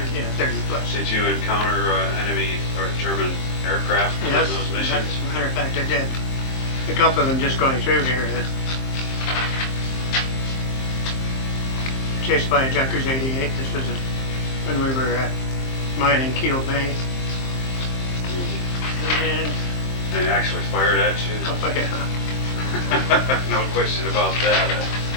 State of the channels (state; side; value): late; right; 23 ms